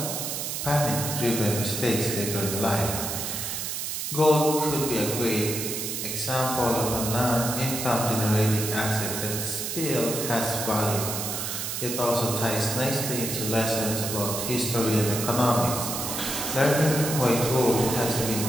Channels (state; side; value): noise; right; hiss, 3 dB below the sound